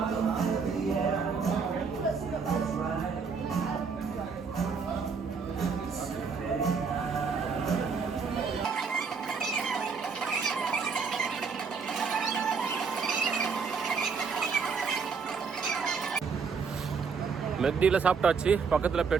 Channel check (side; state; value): left; quieter; 5.4 dB